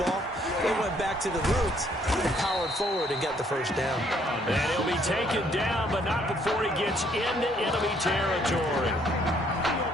They went back to the roots and powered forward and got the first down. And he'll be taken down, but not before he gets into enemy territory.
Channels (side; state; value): both; normal; correlation 0.66